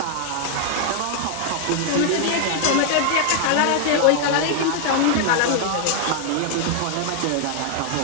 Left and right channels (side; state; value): both; different; correlation 0.00